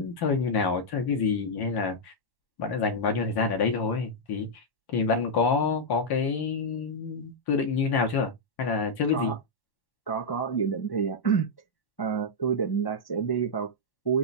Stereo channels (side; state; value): right; late; 1.1 ms